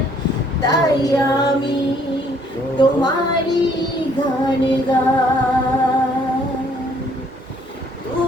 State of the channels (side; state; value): both; normal; correlation 0.63